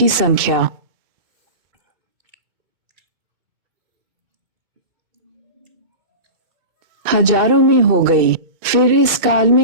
संख्या हजारों में हो गई। फिर इस काल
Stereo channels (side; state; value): left; late; 2.6 ms